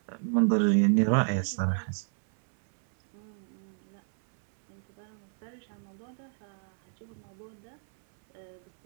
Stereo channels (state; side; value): silent; left; 57 dB below the other